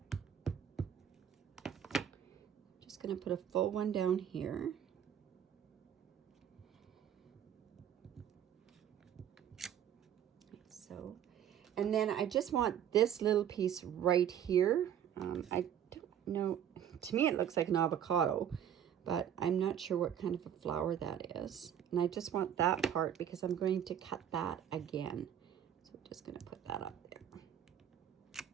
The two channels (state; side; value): quieter; left; 9.6 dB